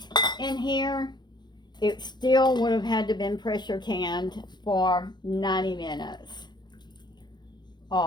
in here, it still would have had to been pressure canned for 90 minutes.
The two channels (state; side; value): late; right; 0.21 ms